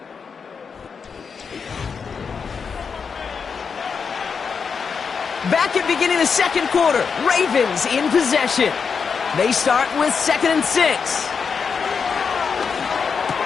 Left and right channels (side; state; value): right; quieter; 5.9 dB